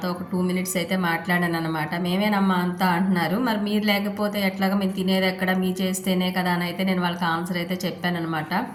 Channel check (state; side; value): identical; both; correlation 1.00